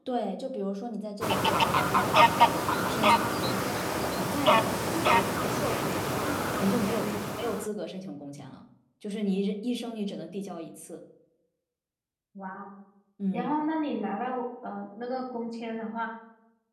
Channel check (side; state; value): both; identical; correlation 1.00